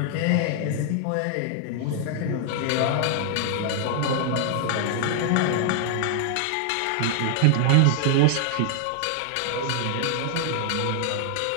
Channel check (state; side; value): different; both; correlation 0.00